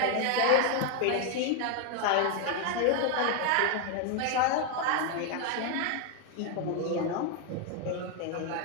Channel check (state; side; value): different; both; correlation 0.01